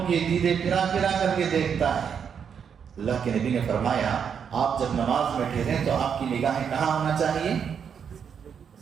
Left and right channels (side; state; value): left; quieter; 7.3 dB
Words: کی دیدے پھرا کر کے دیکھتا ہے۔ اللہ کے نبی نے فرمایا آپ جب نماز میں ٹھہریں تو آپ کی نگاہیں کہاں ہونا چاہیے؟